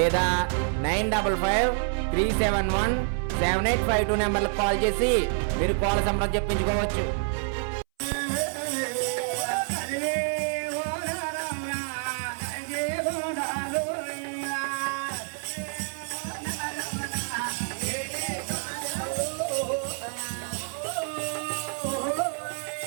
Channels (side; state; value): left; silent; 60 dB below the other